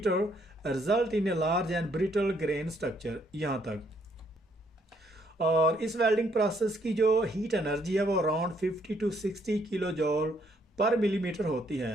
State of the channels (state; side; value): normal; both; correlation 0.70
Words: result in a large and brittle grain structure. यहाँ तक। और इस वेल्डिंग प्रोसेस की जो हीट एनर्जी है वो अराउंड 50 to 60 किलो जूल पर मिलीमीटर होती